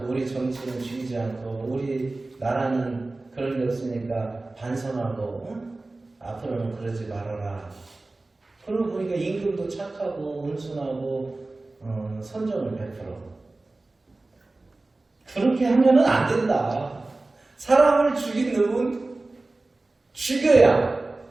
우리 정치는 죽이지 않고 우리 나라는 그런 게 없으니까 반성하고 앞으로는 그러지 말아라. 그러고 보니까 임금도 착하고 온순하고 선정을 베풀어. 그렇게 하면은 안 된다. 사람을 죽인 놈은 죽여야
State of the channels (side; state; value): left; quieter; 3.1 dB